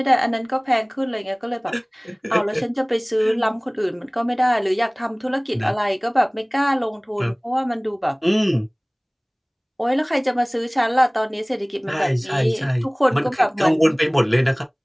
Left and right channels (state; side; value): identical; both; correlation 1.00